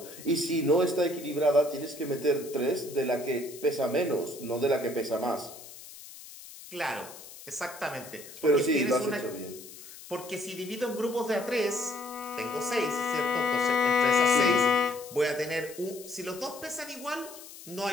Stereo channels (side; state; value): left; noise; hiss, 16 dB below the sound